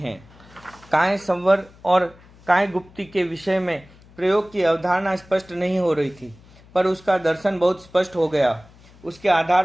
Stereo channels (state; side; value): noise; left; hum, 25 dB below the sound